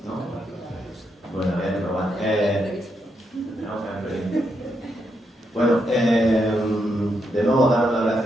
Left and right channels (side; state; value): both; normal; correlation 0.81